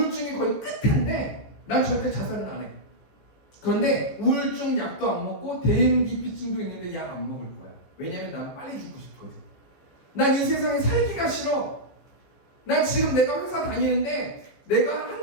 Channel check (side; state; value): right; late; 15 ms